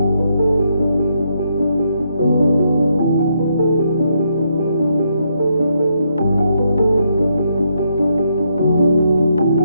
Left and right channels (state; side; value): inverted; both; correlation -0.77